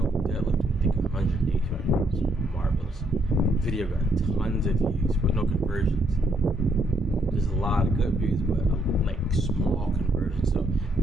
deadlifting, I think 185 pounds. Marvelous. Video got tons of views, but no conversions. There's a lot of good views, but like small conversions. So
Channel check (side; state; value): both; normal; correlation 0.73